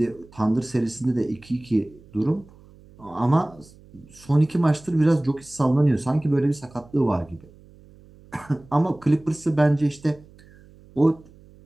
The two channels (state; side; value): noise; right; hum, 24 dB below the sound